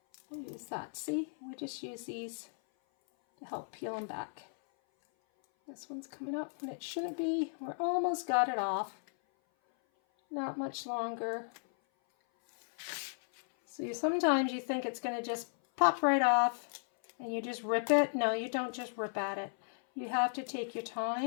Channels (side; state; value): right; silent; 54 dB below the other